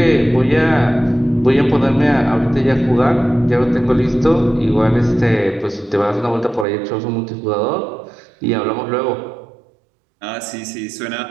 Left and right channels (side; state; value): left; drops out; at 6.7 s